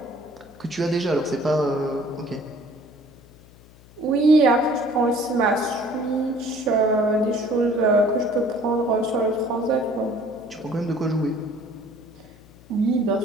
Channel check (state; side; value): noise; left; hum, 24 dB below the sound